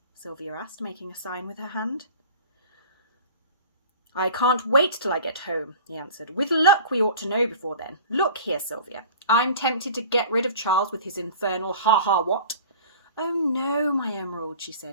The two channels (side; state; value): both; inverted; correlation -0.41